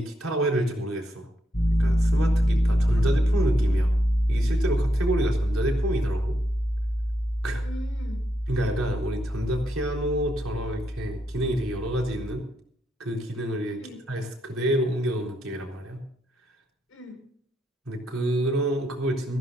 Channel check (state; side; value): normal; both; correlation 0.80